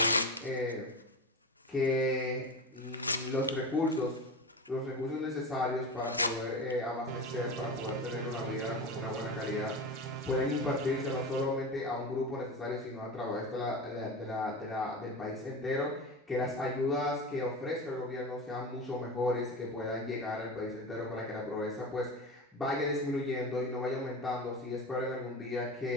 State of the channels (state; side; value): normal; both; correlation 0.25